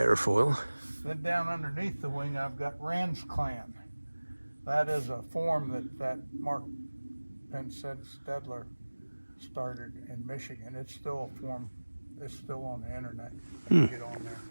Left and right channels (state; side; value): inverted; both; correlation -1.00